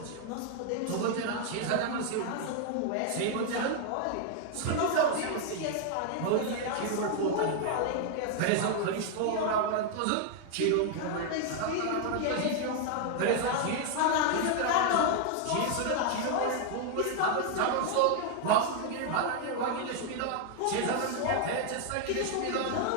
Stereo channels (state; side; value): different; both; correlation 0.00